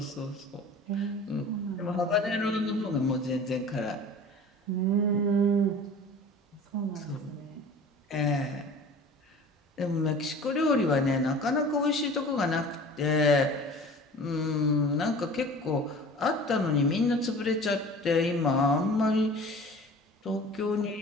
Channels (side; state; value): both; normal; correlation 0.42